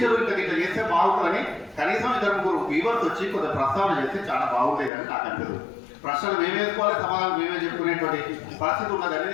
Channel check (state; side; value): drops out; right; at 4.9 s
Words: ఇట్లా చేస్తే బాగుంటుందని కనీసం 2-3 వీవర్స్ వచ్చి కొంత ప్రస్తావన చేస్తే చాలా బాగుంటుంది అని నాకు అనిపిస్తుంది. ప్రశ్నలు మేమే వేసుకోవాలి, సమాధానం మేమే చెప్పుకునేటువంటి పరిస్థితి ఉన్నది